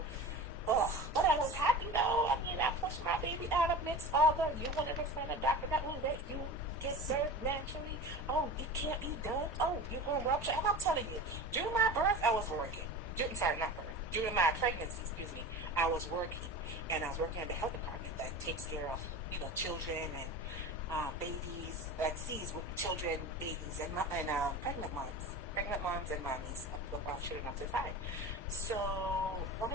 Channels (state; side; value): normal; both; correlation 0.32